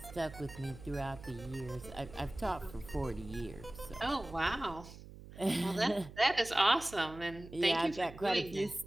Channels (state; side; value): noise; right; hum, 16 dB below the sound